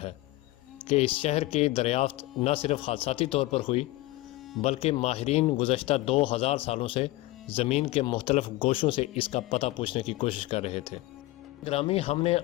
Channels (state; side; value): quieter; right; 18.8 dB